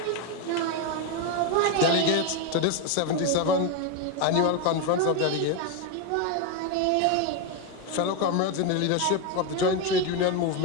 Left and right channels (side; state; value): both; different; correlation 0.02